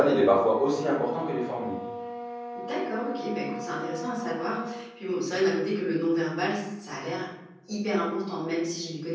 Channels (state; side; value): identical; both; correlation 1.00